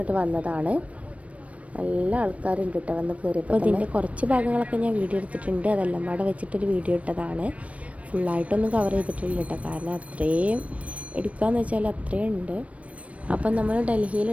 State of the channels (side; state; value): left; late; 0.065 ms